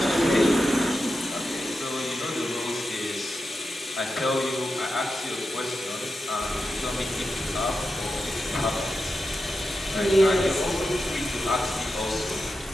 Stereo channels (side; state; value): both; normal; correlation 0.90